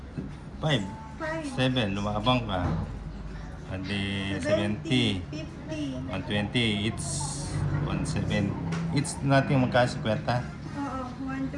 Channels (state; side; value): identical; both; correlation 1.00